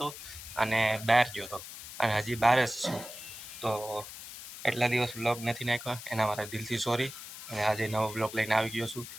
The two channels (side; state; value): left; noise; hiss, 12 dB below the sound